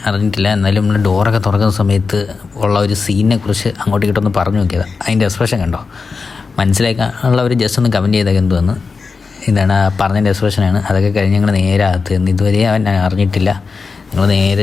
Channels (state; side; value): quieter; right; 4.7 dB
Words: അറിഞ്ഞിട്ടില്ല. എന്നാലും നമ്മൾ ഡോറൊക്കെ തുറക്കുന്ന സമയത്ത് ഉള്ള ഒരു സീനിനെ കുറിച്ച് അങ്ങോട്ട് ഇങ്ങോട്ടൊന്ന് പറഞ്ഞു നോക്കിയത്. അതിൻ്റെ എക്സ്പ്രഷൻ കണ്ടോ, മനസ്സിലാക്കാനുള്ളവർ ജസ്റ്റ് ഒന്ന് കമൻറ്റ് ചെയ്തൊക്കെ എന്തുവന്ന്. ഇതാണ് പറഞ്ഞതിൻ്റെ എക്സ്പ്രഷനാണ്. അതൊക്കെ കഴിഞ്ഞ് ഞങ്ങൾ നേരെ അകത്ത് നിന്ന് ഇതുവരെ അവൻ അറിഞ്ഞിട്ടില്ല. ഞങ്ങൾ